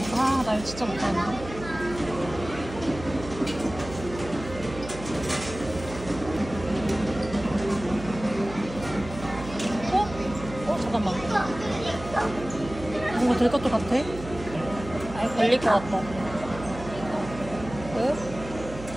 아, 나 이거 진짜 못하는데. 잠깐만. 뭔가 될 것도 같아? 아니, 걸릴 것 같다. 왜?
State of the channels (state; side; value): noise; right; hum, 12 dB below the sound